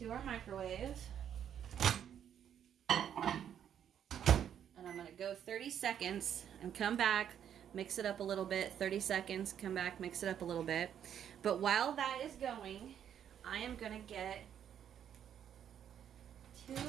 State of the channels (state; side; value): quieter; left; 9.3 dB